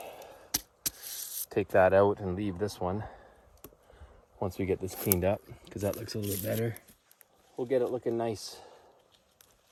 take that out and leave this one once we get this cleaned up, because that looks a little bit better. We'll get it looking nice.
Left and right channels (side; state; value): both; identical; correlation 1.00